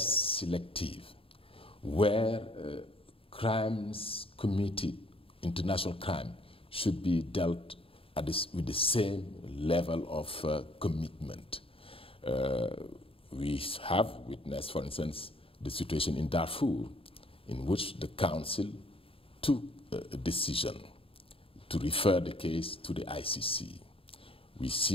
selective, where crimes committed, international crime, should be dealt at with the same level of commitment. We have witnessed, for instance, the situation in Darfur, in which the Council took a decision to refer the case to the ICC. We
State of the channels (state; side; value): late; right; 0.27 ms